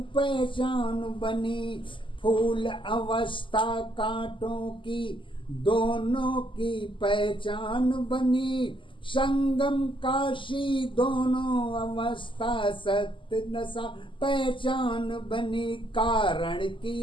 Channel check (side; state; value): right; late; 0.25 ms